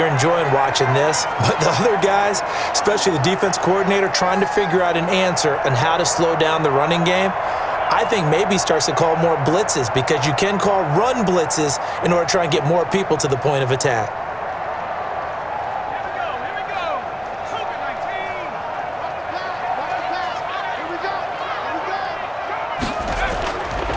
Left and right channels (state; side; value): identical; both; correlation 1.00